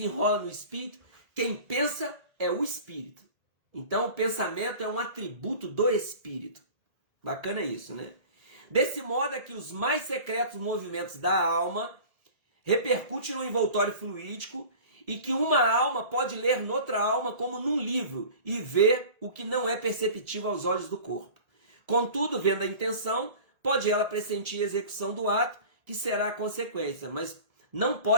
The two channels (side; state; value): left; late; 1.8 ms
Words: no espírito? Quem pensa é o espírito. Então o pensamento é um atributo do espírito. Bacana isso, né? Desse modo é que os mais secretos movimentos da alma repercutem no envoltório fluídico e que uma alma pode ler noutra alma como num livro e ver o que não é perceptível aos olhos do corpo. Contudo, vendo a intenção, pode ela pressentir a execução do ato, que será a consequência, mas não